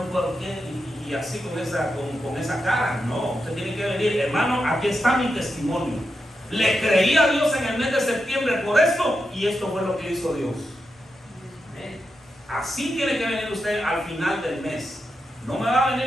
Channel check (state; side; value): normal; both; correlation 0.87